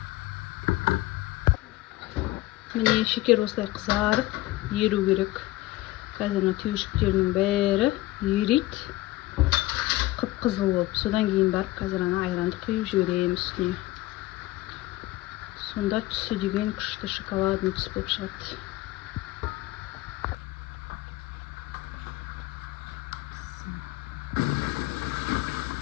Міне шекер осылай қызарып, еру керек. Қазір түйіршіктерінің бәрі ерейді. Қып-қызыл болып. Содан кейін барып, қазір ана айранды құйып жіберемін үстіне. Сонда түсі деген күшті шоколадный түс болып шығады.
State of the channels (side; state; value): right; quieter; 17.9 dB